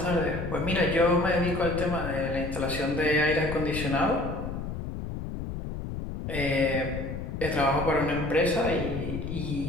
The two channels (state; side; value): noise; left; rumble, 6 dB below the sound